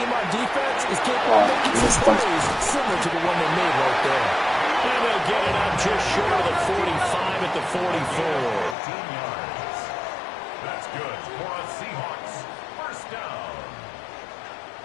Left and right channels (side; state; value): right; drops out; at 8.8 s